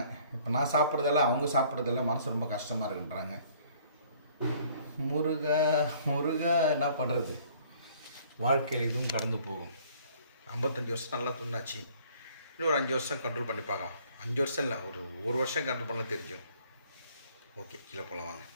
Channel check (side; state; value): both; inverted; correlation -0.58